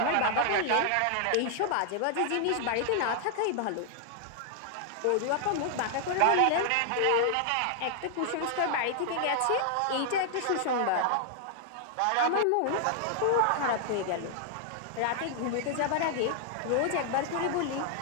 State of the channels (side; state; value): both; different; correlation 0.00